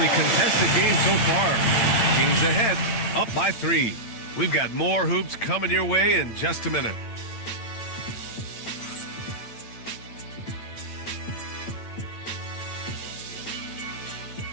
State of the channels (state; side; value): late; right; 8.9 ms